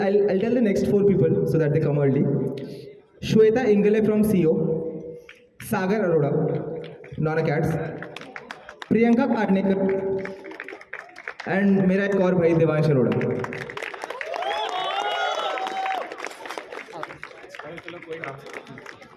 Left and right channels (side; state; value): both; identical; correlation 1.00